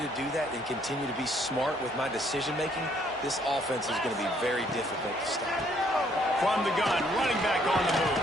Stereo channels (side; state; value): both; normal; correlation 0.66